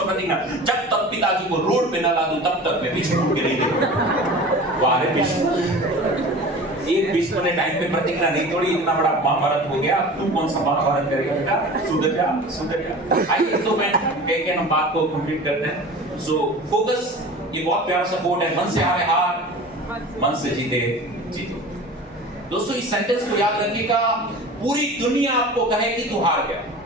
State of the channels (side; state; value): both; normal; correlation 0.37